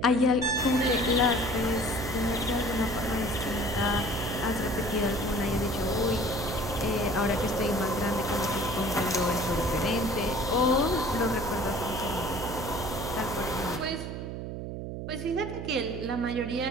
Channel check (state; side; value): noise; right; hum, 6 dB below the sound